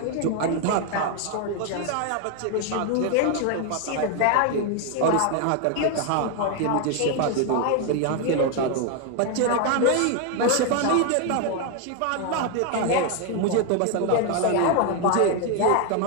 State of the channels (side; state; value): both; different; correlation 0.01